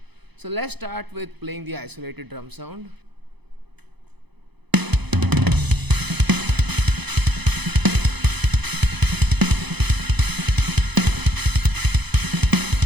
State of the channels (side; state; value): left; late; 0.99 ms